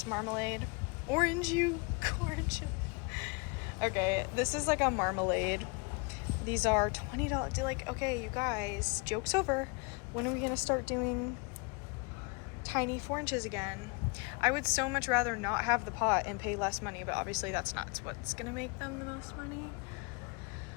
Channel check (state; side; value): quieter; right; 31.1 dB